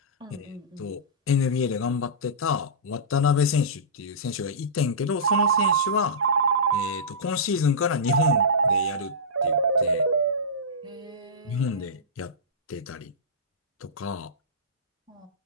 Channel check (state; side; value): normal; both; correlation -0.17